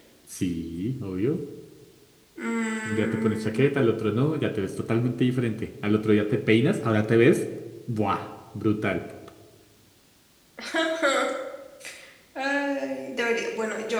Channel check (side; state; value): both; identical; correlation 1.00